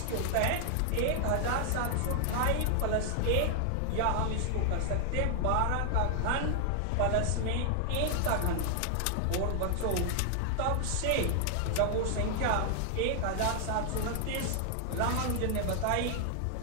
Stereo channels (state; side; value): different; both; correlation 0.00